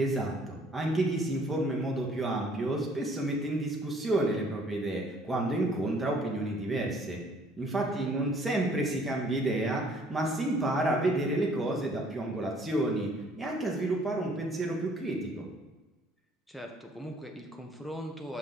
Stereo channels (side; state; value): both; normal; correlation 0.59